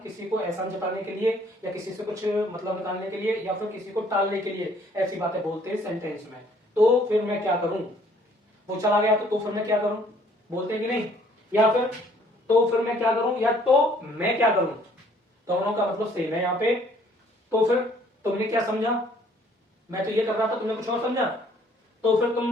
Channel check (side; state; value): both; normal; correlation 0.60